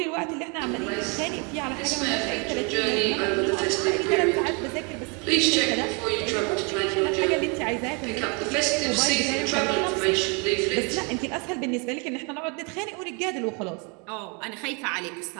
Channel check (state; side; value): quieter; left; 33.1 dB